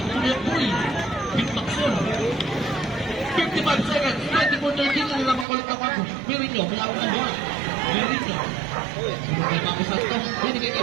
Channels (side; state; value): left; drops out; at 5.5 s